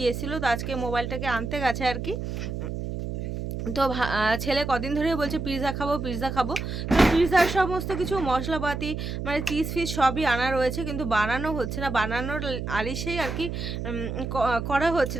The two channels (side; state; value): right; noise; hum, 5 dB below the sound